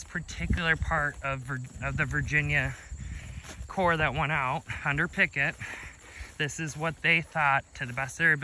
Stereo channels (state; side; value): identical; both; correlation 1.00